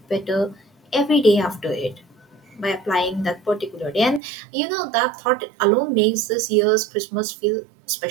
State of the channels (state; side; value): drops out; left; at 4.2 s